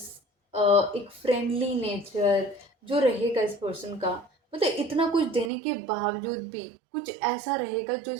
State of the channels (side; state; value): left; drops out; at 5.5 s